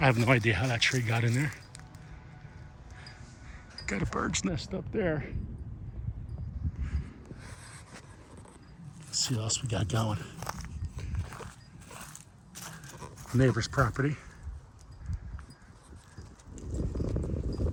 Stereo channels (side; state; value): both; identical; correlation 1.00